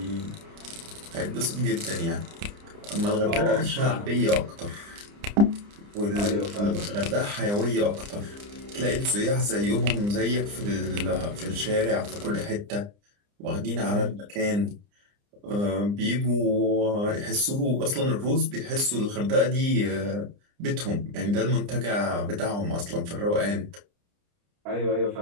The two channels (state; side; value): late; left; 29 ms